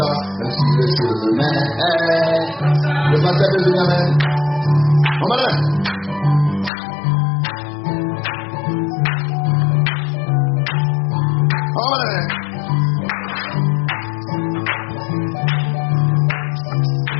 me sur le chemin. Le pasteur de Benjamin. On va là. On va là.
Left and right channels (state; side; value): drops out; right; at 6.7 s